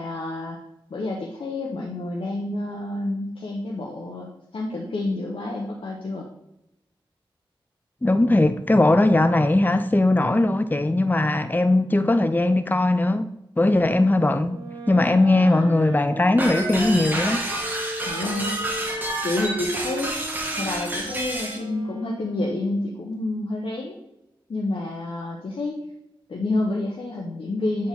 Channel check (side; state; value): both; normal; correlation 0.89